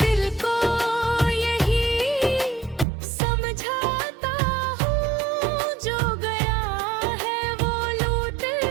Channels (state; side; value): drops out; left; at 2.9 s